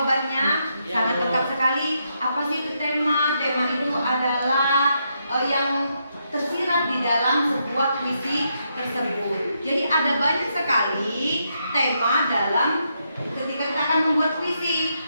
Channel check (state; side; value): inverted; both; correlation -0.80